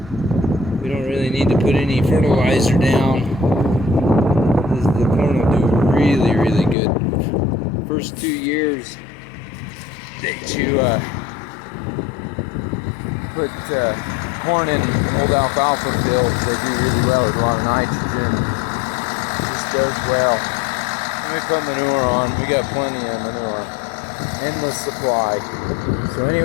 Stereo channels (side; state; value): right; drops out; at 6.8 s